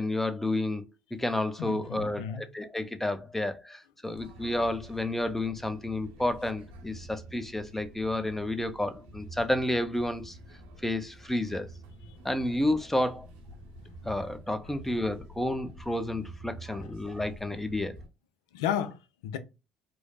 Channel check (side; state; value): both; normal; correlation 0.85